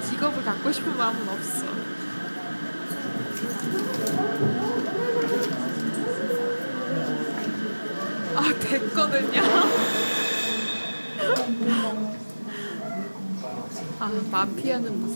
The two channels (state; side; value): inverted; both; correlation -1.00